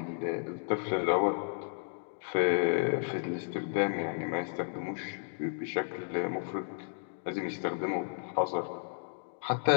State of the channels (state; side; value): silent; right; digital silence